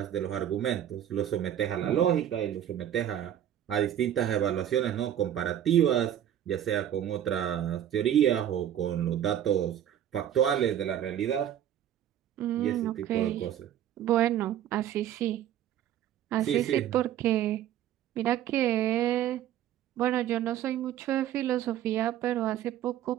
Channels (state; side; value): quieter; left; 10.9 dB